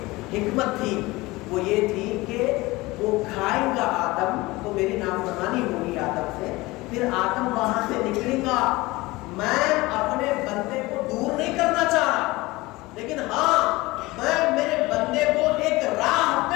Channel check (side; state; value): right; quieter; 21.1 dB